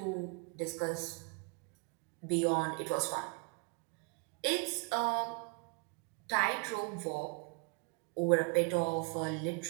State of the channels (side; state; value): left; quieter; 32.6 dB